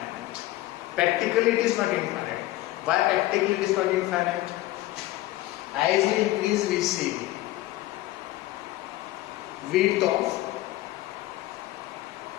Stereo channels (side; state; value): right; quieter; 16.9 dB